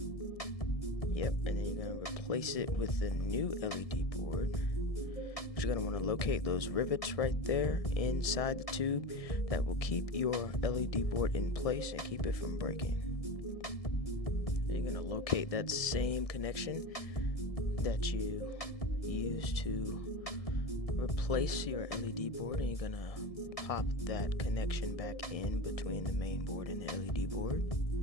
Yep, and then you're going to replace it with the new LED board. You're going to want to locate those rivets right there inside the tube that will keep your LED board in place and keep it from breaking. Then you're going to locate that same connection that you used to replace your LED board, and you're going to pop that connection back in between the main board and the LED board.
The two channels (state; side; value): late; right; 1.7 ms